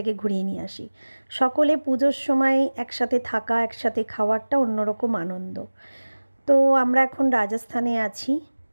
ঘুরিয়ে নিয়ে আসি। সকলে পুজোর সময় একসাথে থাকা, একসাথে খাওয়া একটা অন্যরকম আনন্দ। তো আমরা এখন রাজস্থানে আছি।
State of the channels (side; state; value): both; inverted; correlation -1.00